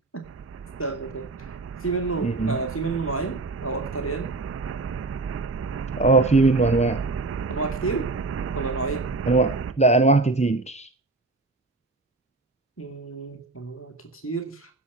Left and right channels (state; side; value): quieter; left; 3.2 dB